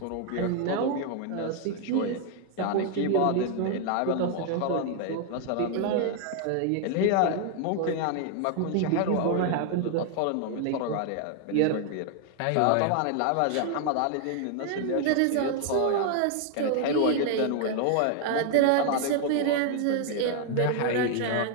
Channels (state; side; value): different; both; correlation 0.00